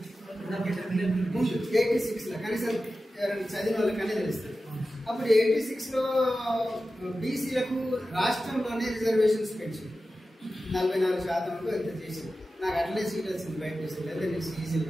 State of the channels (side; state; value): both; normal; correlation 0.94